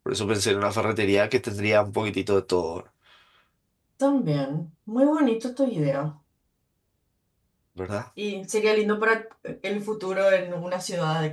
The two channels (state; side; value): identical; both; correlation 1.00